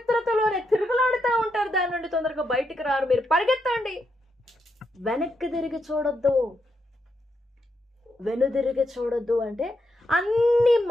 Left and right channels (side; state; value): both; normal; correlation 0.81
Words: తిరుగులాడుతూ ఉంటారు. దాని నుండి తొందరగా బయటికి రారు. మీరు పరిగెత్తండి, వెనక్కి తిరిగి చూడొద్దు అంటే అన్ని